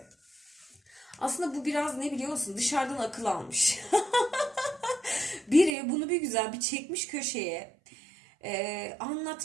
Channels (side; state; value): left; drops out; at 5.8 s